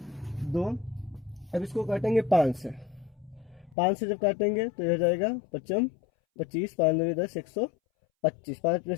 2। अब इसको काटेंगे 5 से, 5 से जब काटेंगे तो यह हो जाएगा 55 25, 5 2 10 125, 5 में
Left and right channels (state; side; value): drops out; right; at 3.8 s